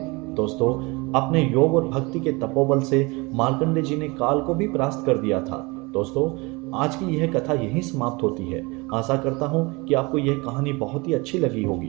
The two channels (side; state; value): left; quieter; 25.9 dB